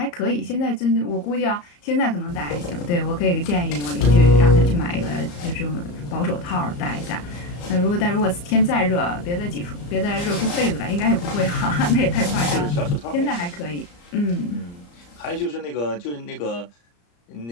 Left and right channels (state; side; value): late; right; 34 ms